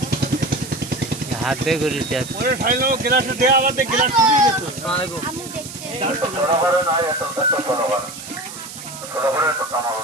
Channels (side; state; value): right; noise; hiss, 12 dB below the sound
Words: হাত দিয়ে করে যাচ্ছে ওরে ঠাইলো গ্লাস দে আবার দে গ্লাস ফুরিয়ে যেত আমি দেখছি